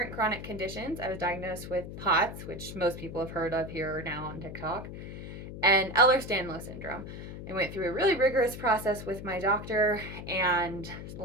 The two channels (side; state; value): left; noise; hum, 10 dB below the sound